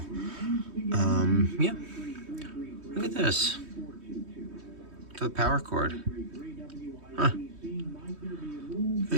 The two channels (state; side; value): late; left; 3.2 ms